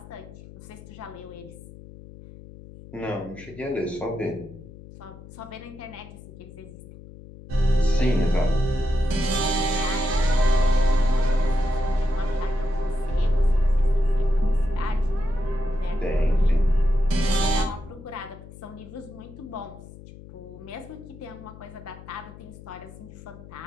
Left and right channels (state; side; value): noise; left; hum, 17 dB below the sound